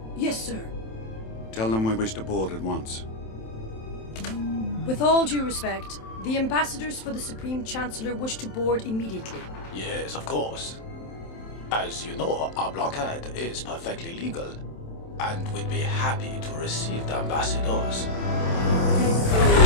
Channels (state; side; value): late; right; 27 ms